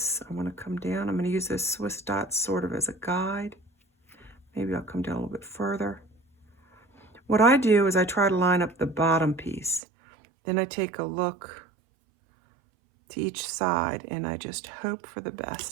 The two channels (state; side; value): drops out; left; at 9.8 s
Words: I want to come down. I'm going to use this Swiss dot sort of as a guide. Maybe I'll come down a little bit further. What I do is I try to line up the bottom piece. Then I take a look to each side and I just hope for the